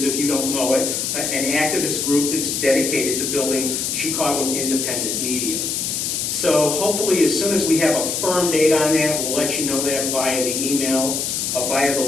if you don't know it, an activist group that's dedicated to building Chicago independent media. So hopefully as soon as we have a firm date on that, we'll let you know that via the email, via the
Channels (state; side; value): noise; left; hiss, 1 dB below the sound